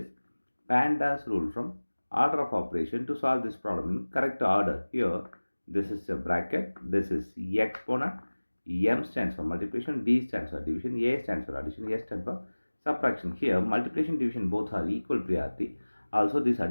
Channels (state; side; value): inverted; both; correlation -1.00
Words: PEMDAS rule from order of operation to solve this problem in correct order. Here this is a bracket, this is exponent, M stands for multiplication, D stands for division, A stands for addition, S stands for subtraction. Here multiplication division both are equal priority. Also these